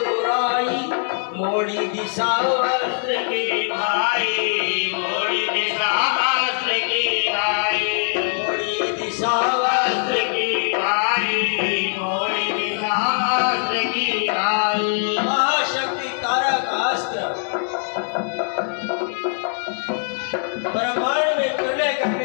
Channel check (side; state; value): right; silent; digital silence